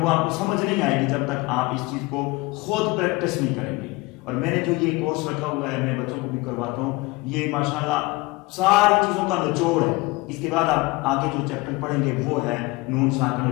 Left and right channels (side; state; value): right; quieter; 23.3 dB